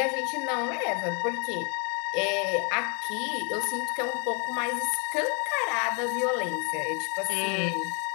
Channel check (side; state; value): right; quieter; 35.9 dB